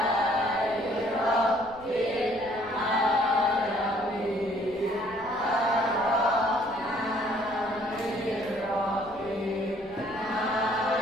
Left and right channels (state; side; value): noise; left; rumble, 23 dB below the sound